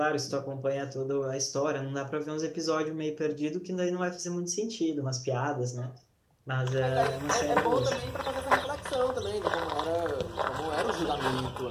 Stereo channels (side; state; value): both; identical; correlation 1.00